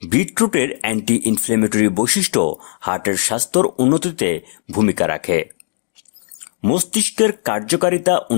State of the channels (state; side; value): silent; right; digital silence